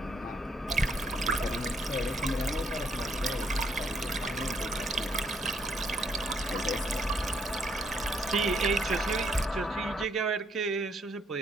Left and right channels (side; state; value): both; normal; correlation 0.71